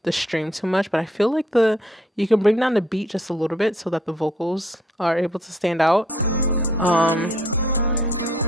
the stream too much, but I feel like you can bring down the beat just a little bit so that the vocals are able to stand out.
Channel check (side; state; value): both; normal; correlation 0.64